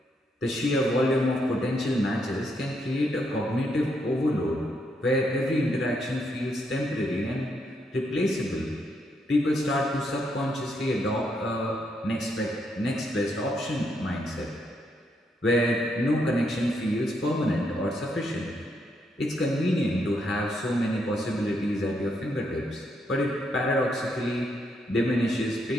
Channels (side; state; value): both; normal; correlation 0.77